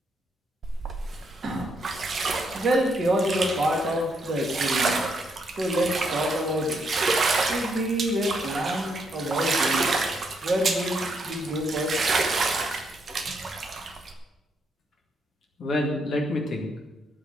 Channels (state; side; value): normal; both; correlation 0.76